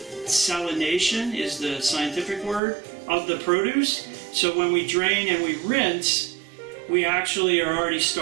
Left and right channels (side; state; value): left; drops out; at 2.6 s